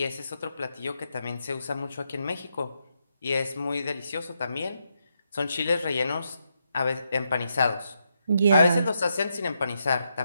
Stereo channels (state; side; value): inverted; both; correlation -0.81